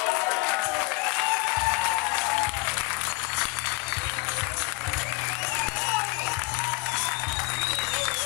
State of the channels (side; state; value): right; quieter; 25.3 dB